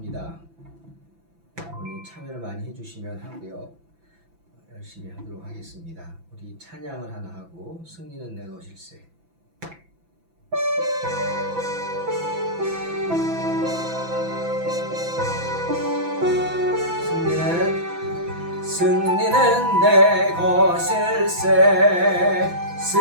여러분이 참여를 많이 해주시면 하고요. 열심히 하도록 하겠습니다. 우리 찬양을 하나 하고 승리는 내 것일세. 승리는 내 것일세.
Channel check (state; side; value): late; left; 6.0 ms